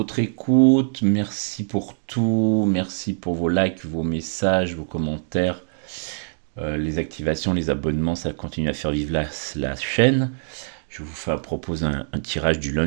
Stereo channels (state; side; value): silent; left; digital silence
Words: écoute, merci pour tout, merci pour vos likes, vos messages, vos commentaires, les activations, les abonnements, ça continue à faire vivre la chaîne. Je vous propose un tirage du